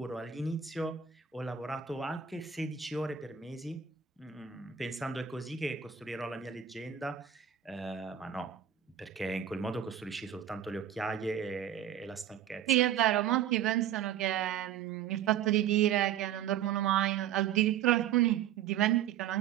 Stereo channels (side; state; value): left; quieter; 9.5 dB